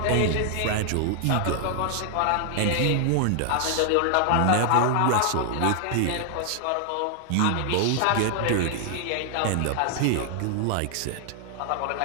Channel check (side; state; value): both; different; correlation 0.00